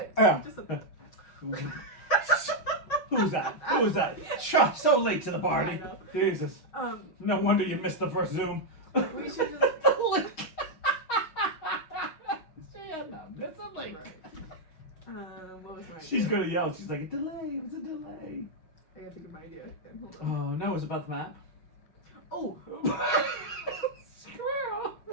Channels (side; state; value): right; late; 6.3 ms